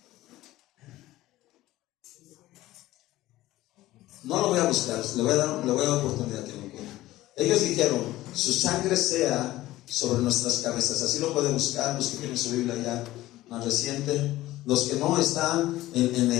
No lo voy a buscar, le voy a dar oportunidad que lo encuentre. Ellos dijeron, su sangre sea sobre nuestras cabezas. Así lo pueden buscar los que tienen su Biblia ya más reciente. Los que no están en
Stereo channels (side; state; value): right; quieter; 16.4 dB